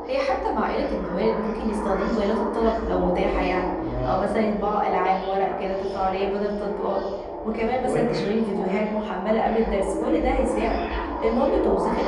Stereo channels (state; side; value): identical; both; correlation 1.00